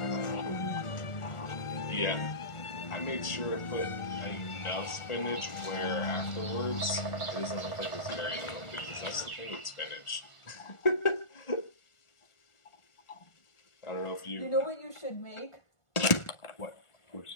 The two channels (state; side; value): late; right; 1.4 ms